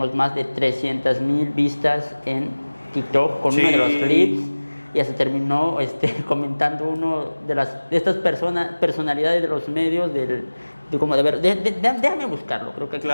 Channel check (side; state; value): both; inverted; correlation -1.00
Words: más de 300,000 vistas en TikTok con uno de los clips. Ya se terminó comentando uno de estas personalidades de los medios déjame buscarlo, creo que